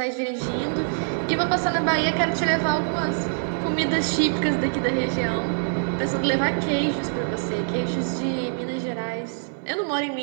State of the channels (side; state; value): left; silent; 58 dB below the other